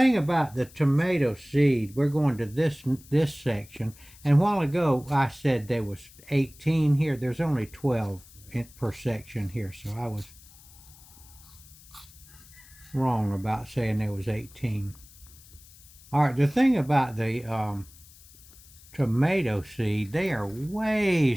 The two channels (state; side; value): noise; left; hiss, 23 dB below the sound